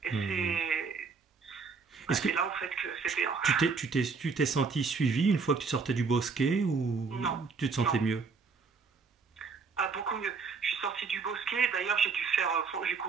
Et c'est là en fait que c'était... Tu t'es senti suivi une fois que tu sortais du bosquet ou non, tu te sentais mieux? Beaucoup mieux. Je suis sortie du bosquet, d'ailleurs j'ai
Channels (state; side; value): quieter; left; 5.0 dB